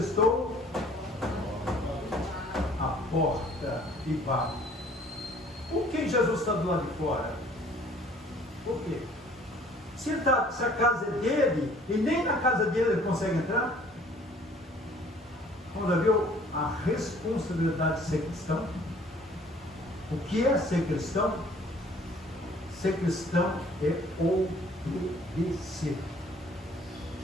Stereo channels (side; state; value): both; normal; correlation 0.55